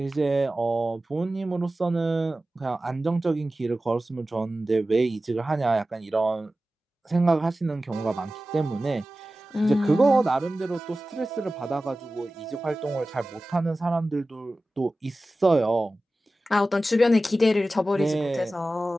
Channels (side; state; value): both; normal; correlation 0.95